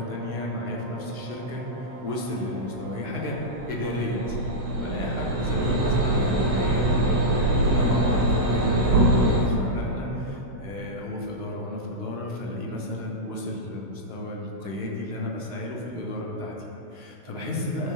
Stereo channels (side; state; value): left; late; 16 ms